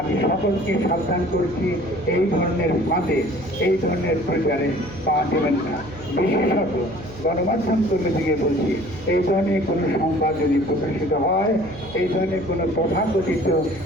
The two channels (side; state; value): right; noise; hum, 16 dB below the sound